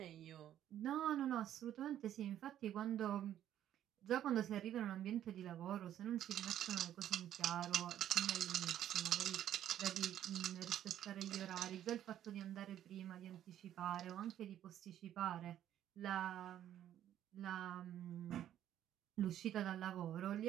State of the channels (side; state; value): left; quieter; 11.3 dB